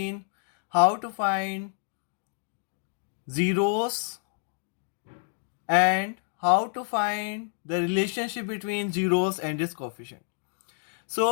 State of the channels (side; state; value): right; silent; 59 dB below the other